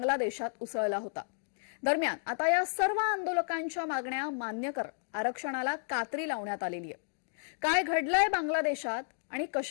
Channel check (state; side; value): silent; right; digital silence